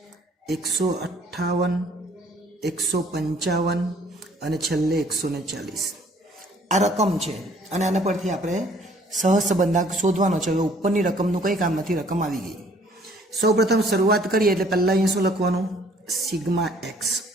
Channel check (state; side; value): normal; both; correlation 0.58